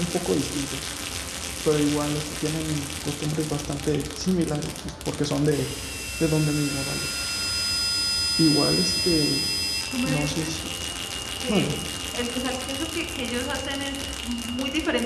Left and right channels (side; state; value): both; identical; correlation 1.00